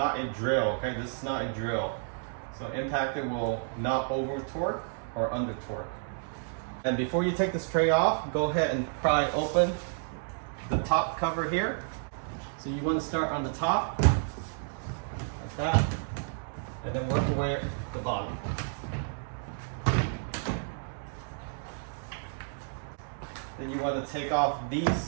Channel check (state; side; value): silent; left; digital silence